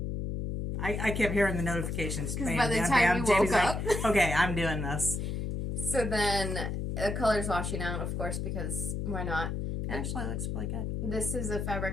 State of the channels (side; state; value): left; noise; hum, 2 dB below the sound